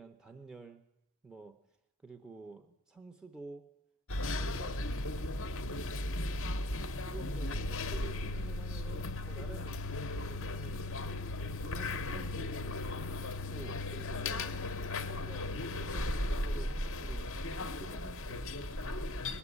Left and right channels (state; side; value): normal; both; correlation 0.52